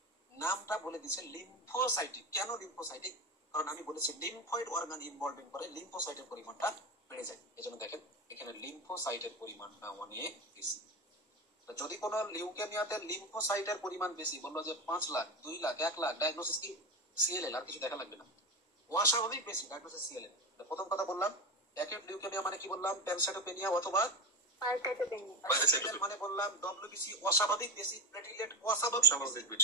নামটা বলে দিচ্ছে লিম্ফোসাইটিক। কেন লিম্ফোসাইটিক? কারণ আমি বলেছি লিম্ফয়েড অর্গান ইনভলভিং করে লিম্ফোসাইটের পরিমাণটা বেড়ে যায়। এজন্য দেখেন এখানে লিম্ফোসাইটের পরিমাণটা অনেক বেশি। যদি কোনো লিউকেমিয়াতে লিম্ফোসাইটের পরিমাণ বেশি, বললো যে 5 লাখ, 2 লাখ, 1 লাখ, ডায়াগনোসিস কি সিএলএল, আর কিছু দেখা লাগবে না। অস্বাভাবিক বেশি, ডায়াগনোসিস সিএলএল। প্রথম কথা বললাম অ্যাকিউট লিউকেমিয়া মানে কি বললাম? প্যানসাইটোপেনিয়া অথবা মানে বললাম ডব্লিউবিসি অস্বাভাবিক বেশি, প্লেটলেট অস্বাভাবিক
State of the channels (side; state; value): both; normal; correlation 0.22